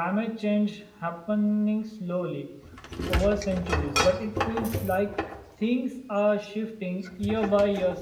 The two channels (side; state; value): both; identical; correlation 1.00